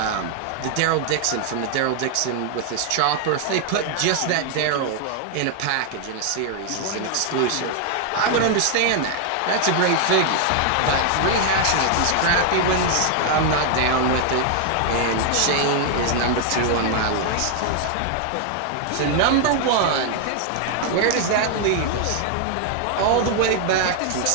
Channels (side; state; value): both; different; correlation 0.00